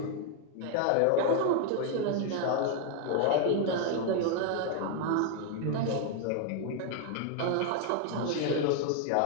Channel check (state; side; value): different; both; correlation 0.00